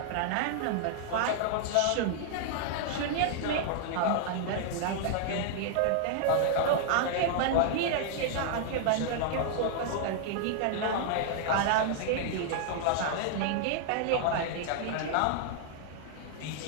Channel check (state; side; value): different; both; correlation -0.01